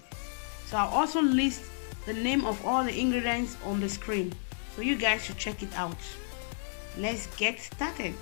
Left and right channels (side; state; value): right; silent; digital silence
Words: So I'll also list the name of all the ingredients on the screen, so you guys should check it out. Let's get started.